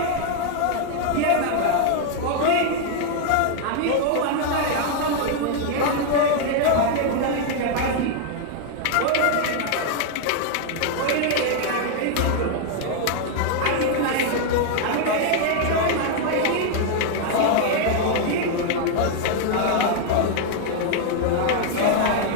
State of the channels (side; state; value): both; different; correlation 0.00